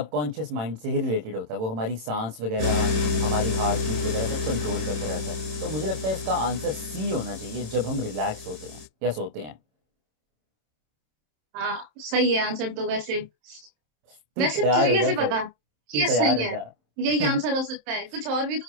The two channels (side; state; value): left; late; 27 ms